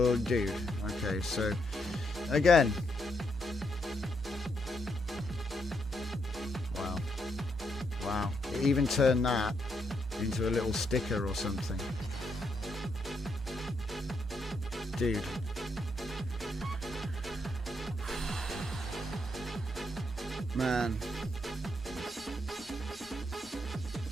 dude. Okay, so again. Wow. Wow. It even turned that into a little sticker or something. Dude. Man.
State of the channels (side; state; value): both; normal; correlation 0.78